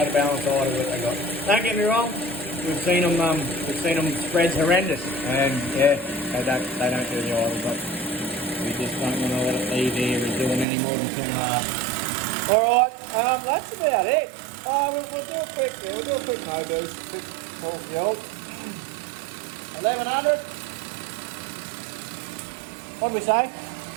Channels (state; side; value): drops out; left; at 10.7 s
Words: of balance idle that they got. Don't get me wrong. We've seen them spreads horrendous, and yeah, they don't do the idle, but we just don't want to let it be there. We're doing any more than 2.5. All right, that's about it. We'll do a quick no boost, quick full field. 1100. What did we say?